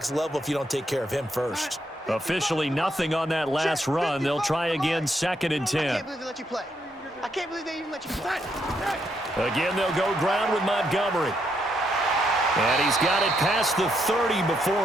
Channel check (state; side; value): normal; both; correlation 0.77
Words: level if you don't take care of him first. Officially nothing on that last run. They'll try again, 2nd and 10. I can't believe they let you play. I can't believe they even let you play. Again, they'll go ground with Montgomery. And he's got it past the 30